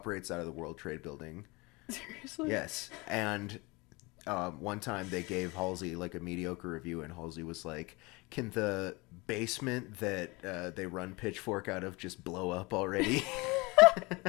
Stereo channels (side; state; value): right; quieter; 25.3 dB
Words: out of the World Trade Building. Seriously? Yes, and one time they gave Halsey like a mediocre review, and Halsey was like, "Can the basement that they run Pitchfork out of just blow up already?"